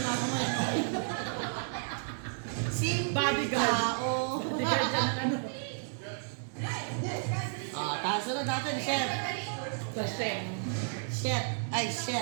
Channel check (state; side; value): silent; left; digital silence